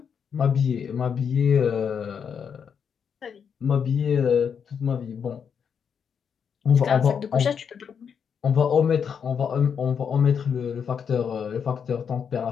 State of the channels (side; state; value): right; quieter; 7.1 dB